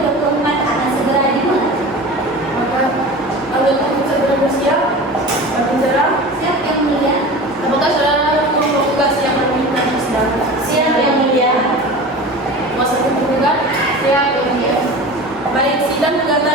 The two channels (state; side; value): normal; both; correlation 0.34